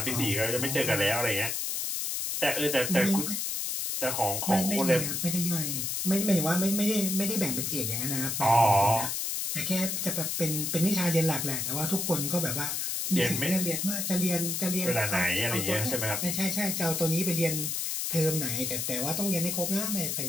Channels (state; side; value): noise; left; hiss, 1 dB below the sound